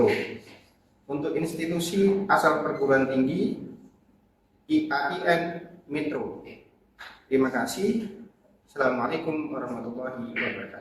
Untuk institusi asal perguruan tinggi IAIN Metro. Terima kasih. Assalamualaikum warahmatullahi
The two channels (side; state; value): both; identical; correlation 1.00